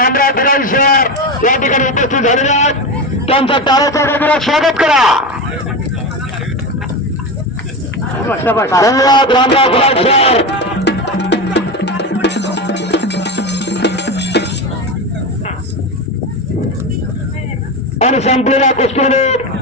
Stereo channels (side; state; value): both; normal; correlation 0.20